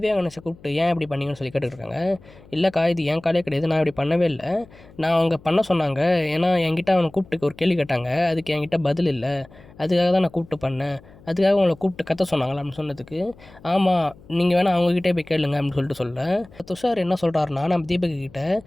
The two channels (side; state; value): left; noise; hum, 24 dB below the sound